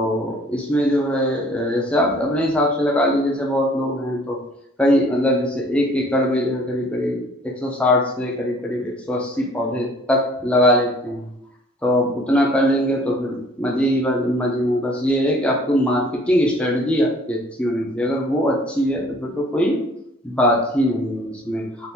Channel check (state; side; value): normal; both; correlation 0.54